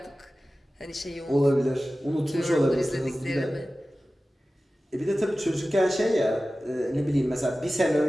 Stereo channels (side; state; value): both; normal; correlation 0.96